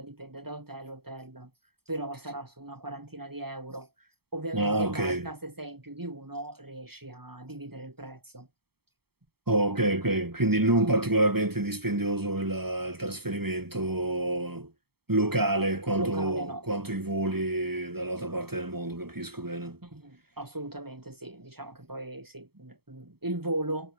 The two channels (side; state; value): left; late; 0.96 ms